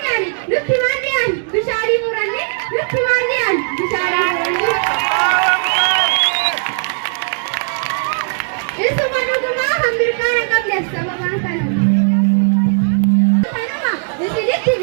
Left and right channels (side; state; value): left; silent; digital silence